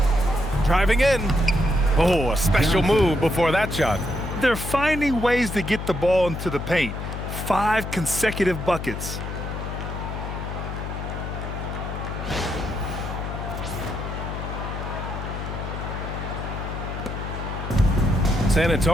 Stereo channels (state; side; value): noise; left; hum, 6 dB below the sound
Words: Driving in. Oh, a special move before that shot. They're finding ways to get the ball into the paint. 5 consecutive buckets. San